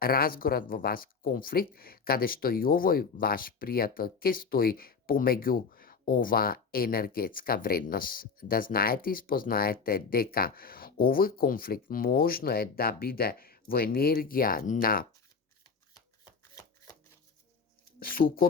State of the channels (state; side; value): quieter; right; 5.3 dB